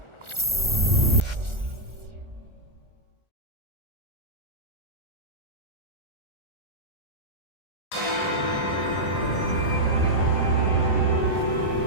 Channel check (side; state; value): left; late; 1.4 ms